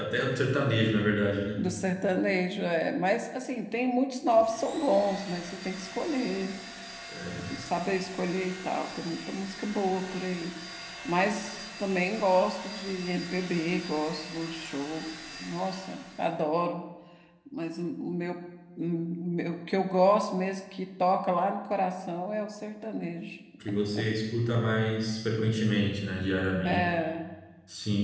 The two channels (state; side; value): identical; both; correlation 1.00